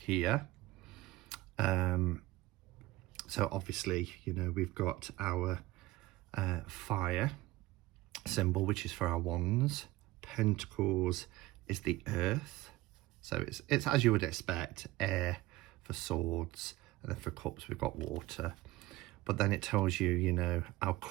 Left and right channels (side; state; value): left; quieter; 18.0 dB